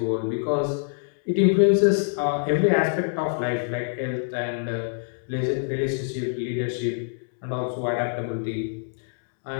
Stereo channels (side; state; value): right; silent; digital silence